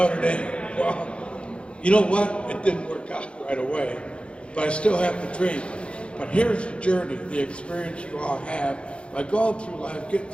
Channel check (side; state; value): right; late; 0.058 ms